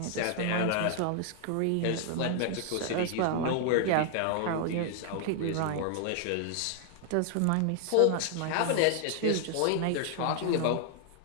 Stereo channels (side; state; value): both; different; correlation 0.00